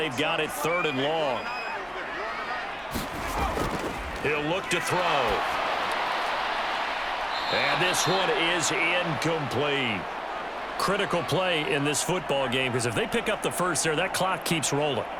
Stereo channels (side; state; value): both; identical; correlation 1.00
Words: got it 3rd and long. He'll look to throw. And this one is incomplete. Critical play in this football game, because if they pick up the first there, that clock keeps rolling.